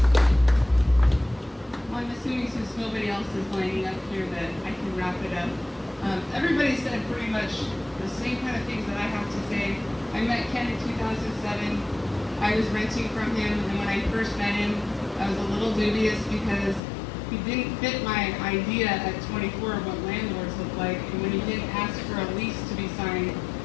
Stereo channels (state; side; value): drops out; right; at 16.8 s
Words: Since nobody else is lining up here, that I can wrap it up. Everybody said pretty much the same kind of things that I have to say. I met Ken in 2007. I was renting from him, and when I first met him, I was a little dubious because he didn't fit my idea at 24 of what landlords look like, and when he didn't ask for a lease to be signed,